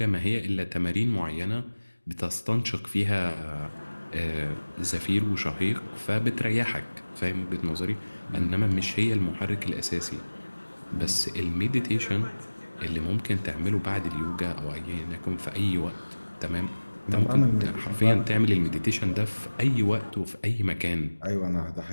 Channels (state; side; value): inverted; both; correlation -1.00